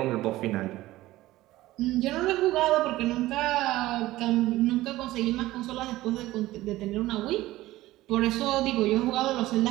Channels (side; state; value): left; quieter; 16.9 dB